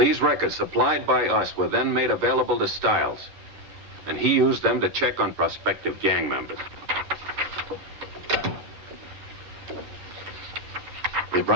records supplied by us were then made available to Stiles, and he used them to check on prospective gang members. Is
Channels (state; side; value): late; left; 11 ms